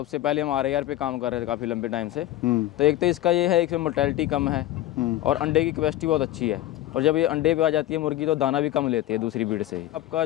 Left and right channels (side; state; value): right; quieter; 14.6 dB